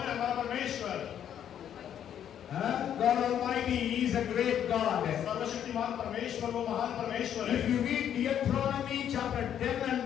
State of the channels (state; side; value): quieter; right; 9.7 dB